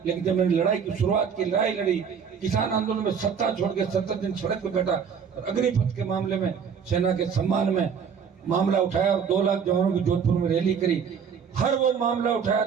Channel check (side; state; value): left; quieter; 6.8 dB